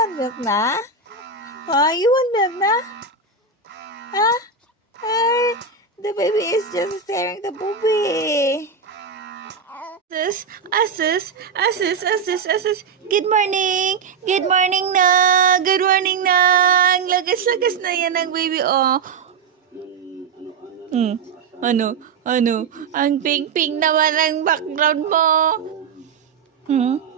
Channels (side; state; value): left; quieter; 5.3 dB